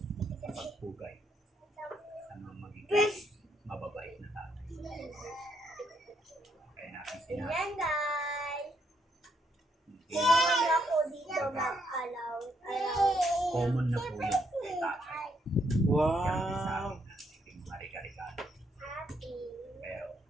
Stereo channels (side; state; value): both; normal; correlation 0.74